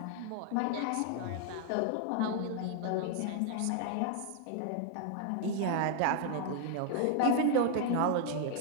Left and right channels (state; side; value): different; both; correlation 0.00